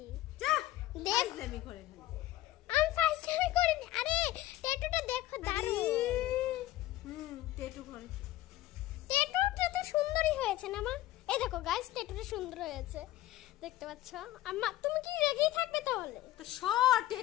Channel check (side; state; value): right; quieter; 15.4 dB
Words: যা দেখ, ফাইজলামি করে ফেলি। আমি ফাইজলামি করিনি। আরে ট্যাটুটা দেখো দারুণ। ট্যাটু করে। ট্যাটুটা তো সুন্দরই হয়েছে না মা? এই দেখো গাইস, ট্যাটুটা সুন্দর হয়েছে, দেখতে পাচ্ছ? আম্মা তুমি কি রেগেই থাকবে তাহলে? তো শর্ট